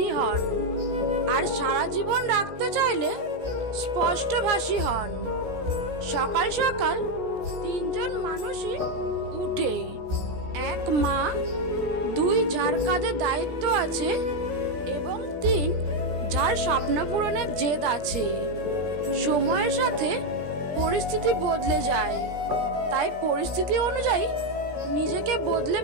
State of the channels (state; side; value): late; left; 17 ms